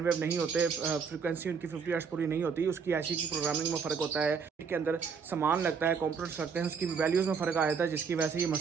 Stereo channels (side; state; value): left; quieter; 5.9 dB